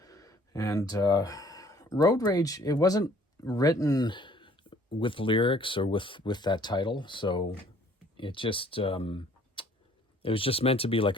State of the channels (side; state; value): both; normal; correlation 0.57